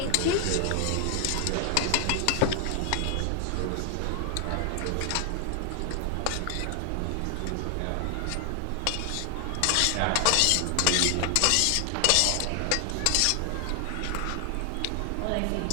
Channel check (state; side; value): different; both; correlation 0.00